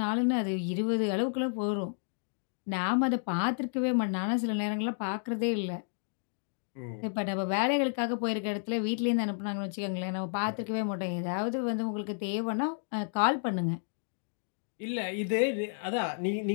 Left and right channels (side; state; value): right; silent; digital silence